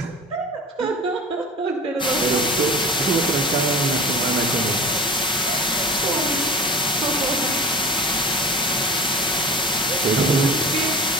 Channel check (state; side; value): normal; both; correlation 0.35